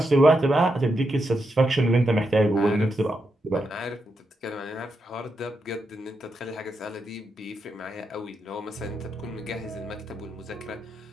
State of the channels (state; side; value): normal; both; correlation 0.84